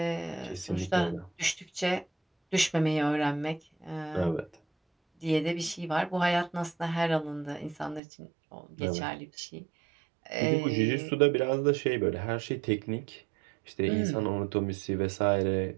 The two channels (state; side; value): drops out; left; at 8.0 s